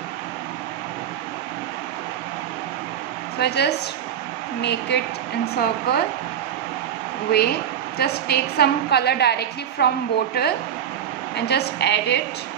So I just make it in circle way. Just take some color directly from bottle and just add it.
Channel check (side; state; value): left; quieter; 9.4 dB